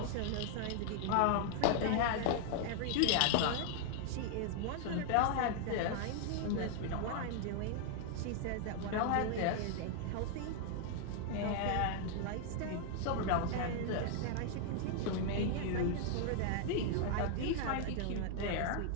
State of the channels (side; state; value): both; different; correlation 0.00